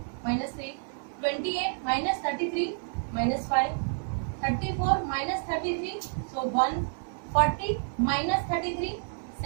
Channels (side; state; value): left; silent; 58 dB below the other